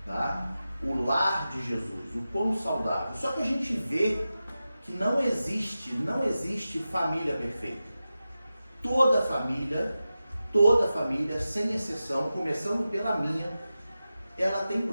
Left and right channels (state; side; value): inverted; both; correlation -0.93